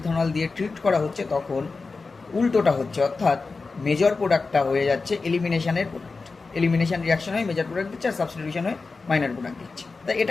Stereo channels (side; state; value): right; quieter; 4.1 dB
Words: দিয়ে ট্রিট করা হচ্ছে তখন উল্টোটা হচ্ছে, অর্থাৎ মেজর প্রোডাক্টটা হয়ে যাচ্ছে এলিমিনেশনের প্রোডাক্ট। এলিমিনেশন রিয়াকশন হয় মেজর প্রোডাক্ট দিচ্ছে, আর সাবস্টিটিউশন হয় মাইনর প্রোডাক্ট দিচ্ছে। তাই